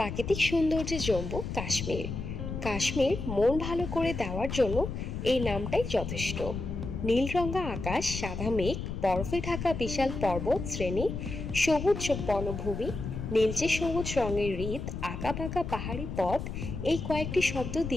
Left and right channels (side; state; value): left; noise; rumble, 6 dB below the sound